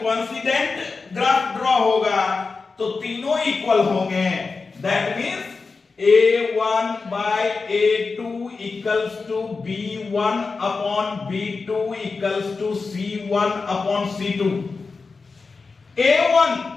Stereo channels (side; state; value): right; quieter; 4.4 dB